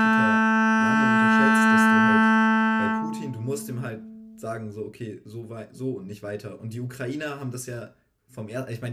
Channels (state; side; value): identical; both; correlation 1.00